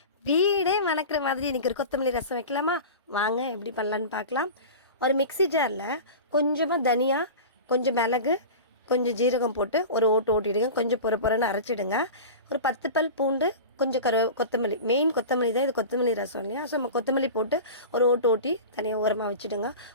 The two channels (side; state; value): both; inverted; correlation -0.31